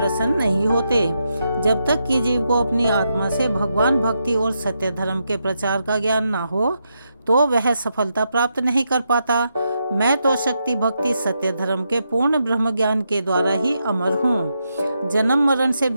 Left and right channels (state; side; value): inverted; both; correlation -0.83